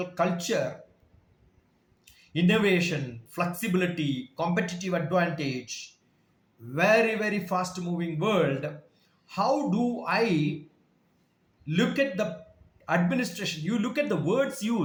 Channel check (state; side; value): identical; both; correlation 1.00